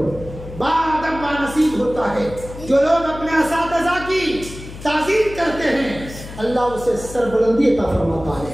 بادب نصیب ہوتا ہے۔ جو لوگ اپنے اساتذہ کی تعظیم کرتے ہیں اللہ اسے سربلندی عطا فرماتا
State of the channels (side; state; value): left; noise; hum, 13 dB below the sound